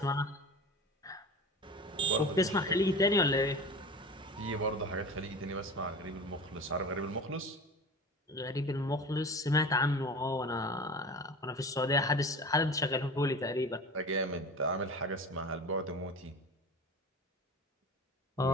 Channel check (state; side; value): normal; both; correlation 0.34